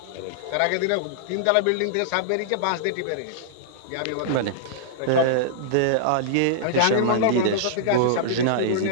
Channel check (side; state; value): both; different; correlation -0.02